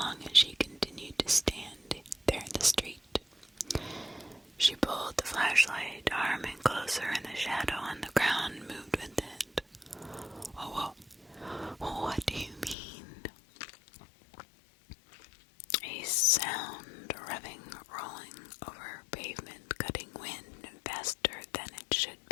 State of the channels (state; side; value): drops out; right; at 12.8 s